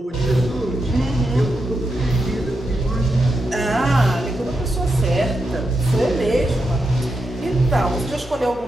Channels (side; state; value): both; normal; correlation 0.85